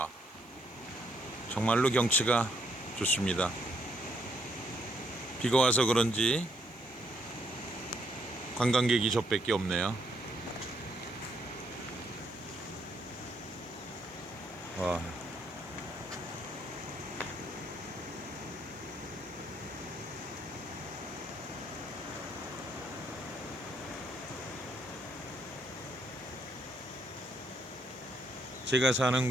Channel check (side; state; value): right; noise; hiss, 28 dB below the sound